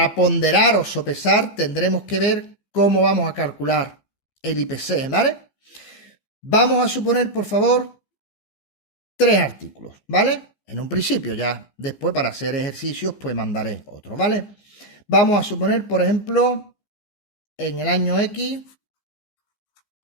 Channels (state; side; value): late; right; 15 ms